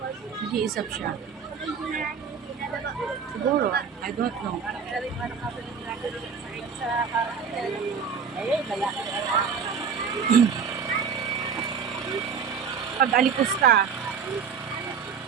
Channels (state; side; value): quieter; left; 6.4 dB